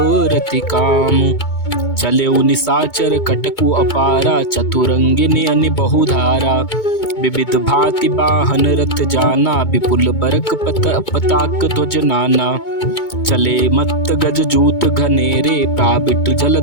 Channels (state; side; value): late; right; 2.2 ms